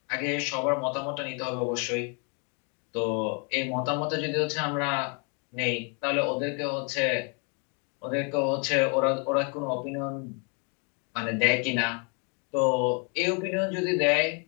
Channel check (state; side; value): quieter; right; 36.7 dB